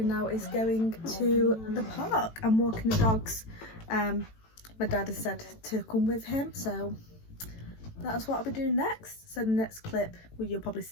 now is going to the park and walking the dogs. My dad has said to come with him, so that's what I'll be doing next. So the next clip, well, you'll probably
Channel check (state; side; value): late; right; 18 ms